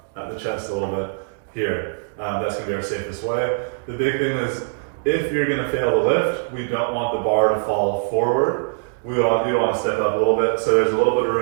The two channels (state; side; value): silent; left; digital silence